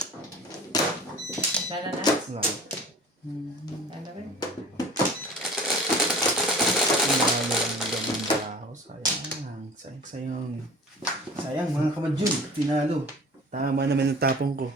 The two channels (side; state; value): both; normal; correlation 0.42